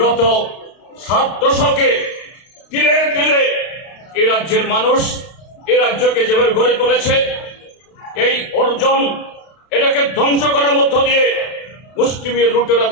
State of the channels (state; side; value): late; right; 32 ms